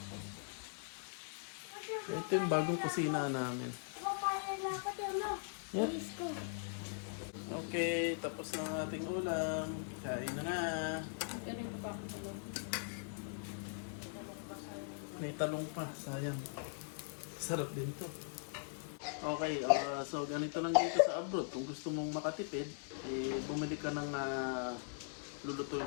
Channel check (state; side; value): silent; right; digital silence